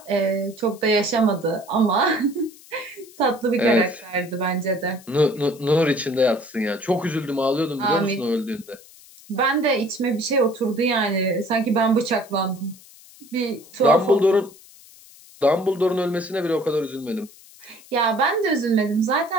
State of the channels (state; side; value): noise; left; hiss, 23 dB below the sound